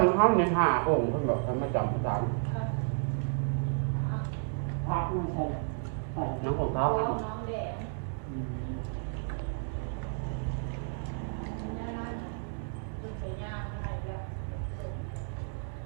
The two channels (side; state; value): left; silent; digital silence